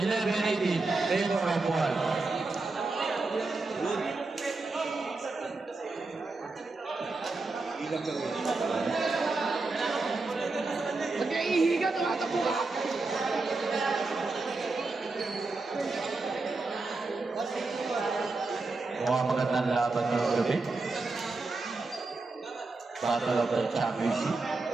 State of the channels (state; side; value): quieter; left; 3.6 dB